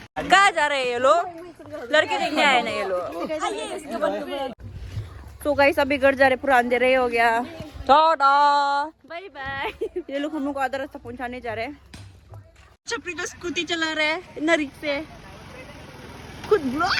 कहाँ जा रहे हैं ये लोग? लड़के देखने आए ना ये लोग। तो गाइस अभी घर जा रहे, पूरा अंधेरा हो गया। Tata bye bye. ये लोग हम लोग को आधा रास्ता पहुंचाने जा रहे हैं। छपरी तो स्कूटी चला रहे हैं ना, रिक्शे खुद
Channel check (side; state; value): both; identical; correlation 1.00